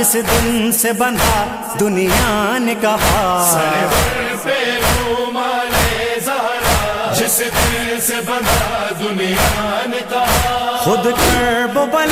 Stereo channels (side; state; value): both; identical; correlation 1.00